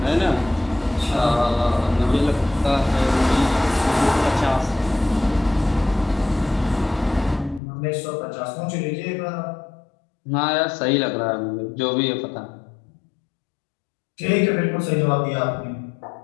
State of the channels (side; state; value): right; drops out; at 7.6 s